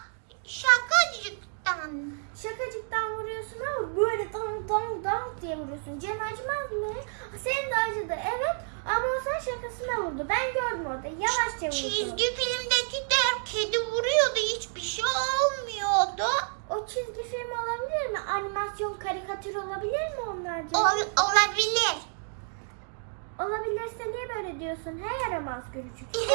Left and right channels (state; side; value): silent; left; 58 dB below the other